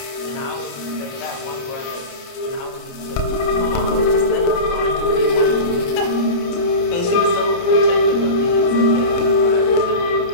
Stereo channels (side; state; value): right; late; 29 ms